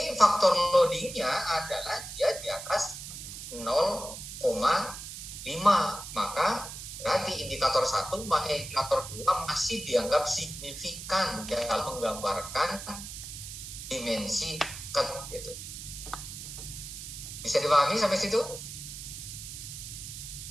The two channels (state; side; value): noise; right; hiss, 10 dB below the sound